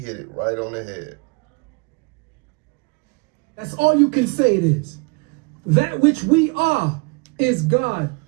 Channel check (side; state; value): left; quieter; 31.4 dB